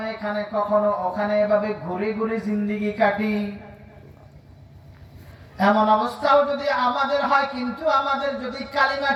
এখানে কখনো ওখানে, এভাবে ঘুরে ঘুরে জিন্দেগি কাটি, এমন অবস্থাও যদি আমাদের হয়, কিন্তু আমাদের যদি কালিমা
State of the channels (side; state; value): both; identical; correlation 1.00